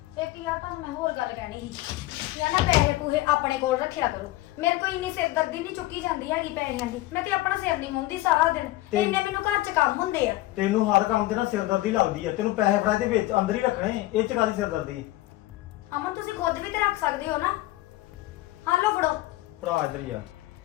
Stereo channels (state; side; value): quieter; right; 17.6 dB